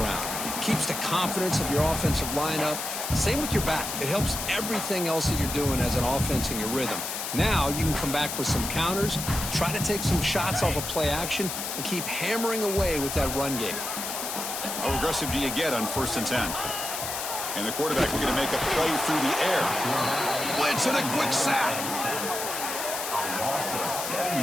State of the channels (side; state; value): left; noise; hiss, 4 dB below the sound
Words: Keeps the confidence of your offensive lineup. Same with your back. It helps everything else that you're doing as an offense in your rhythm. Now you can come back with some counters, try to take some shots off of play action, and keep hammering away with that run game. How aggressive do you get on 1st and 10? And the quarterback looking to make a play through the air. Blitz and a quick sack.